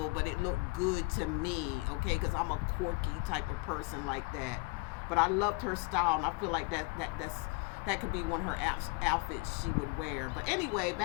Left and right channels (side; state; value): right; quieter; 26.4 dB